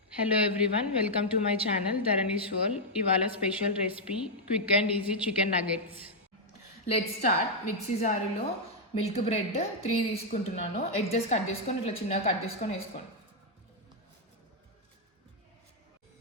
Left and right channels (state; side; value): normal; both; correlation -0.03